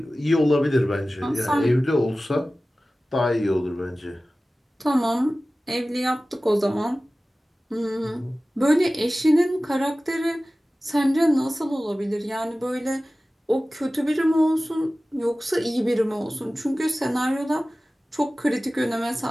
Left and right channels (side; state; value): both; normal; correlation 0.97